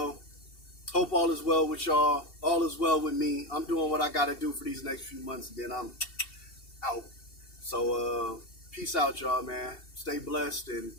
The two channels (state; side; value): late; right; 2.7 ms